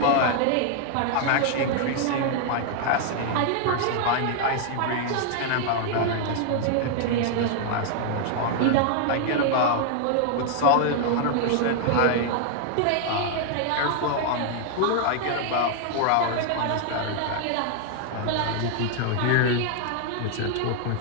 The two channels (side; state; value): both; different; correlation 0.00